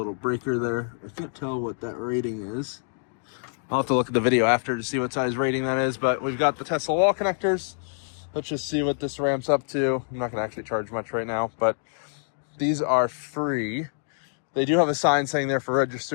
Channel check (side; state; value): right; silent; digital silence